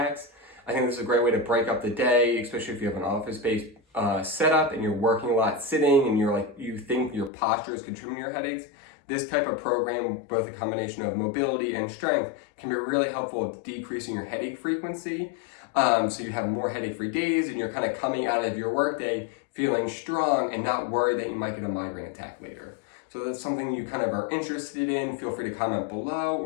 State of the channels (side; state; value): right; drops out; at 7.3 s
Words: I think this is a great way to break up the day, especially if you have an office-based setup and you're working a lot sitting and you think your posture is contributing to your headaches. This type of program, both a combination of mobility and strength, can be really helpful at decreasing your headache frequency. So you have more headache-free days and you're kind of coming out of your workday feeling strong and not worried that you might get a migraine attack later. So that's something you kind of are interested in. Feel free to comment below